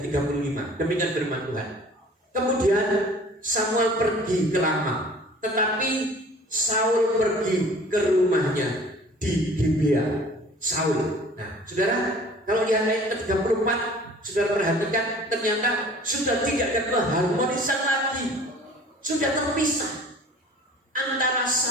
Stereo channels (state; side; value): normal; both; correlation 0.48